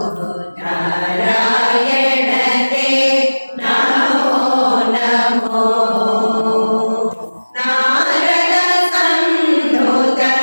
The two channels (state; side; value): inverted; both; correlation -1.00